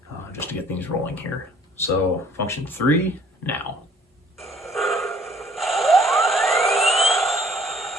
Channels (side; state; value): both; normal; correlation 0.56